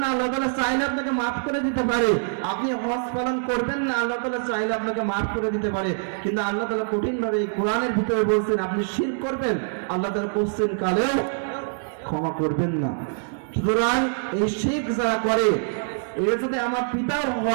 না, আল্লাহ তাআলা চাইলে আপনাকে মাফ করে দিতে পারে। আপনি হজ পালন করবেন না, আল্লাহ তাআলা চাইলে আপনাকে মাফ করে দিতে পারে। কিন্তু আল্লাহ তাআলা কঠিন ভাবে এই কোরআনের ভিতরে বলছেন আপনি শিরক করবেন, আল্লাহ তাআলা কোশ্চেন কালেও ক্ষমা করবেন না। সুতরাং এই শিরক যারা করে, এর যদি আমার পিতাও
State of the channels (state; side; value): silent; left; digital silence